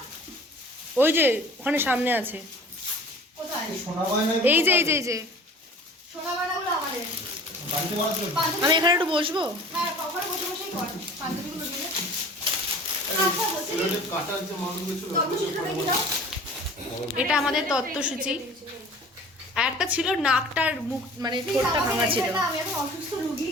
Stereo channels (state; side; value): normal; both; correlation 0.44